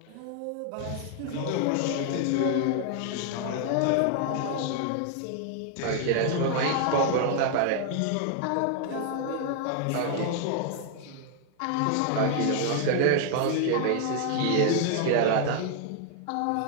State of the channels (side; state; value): both; different; correlation 0.00